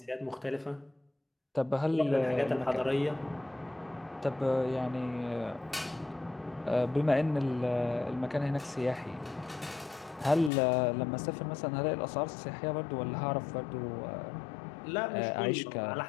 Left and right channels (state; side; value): drops out; right; at 10.5 s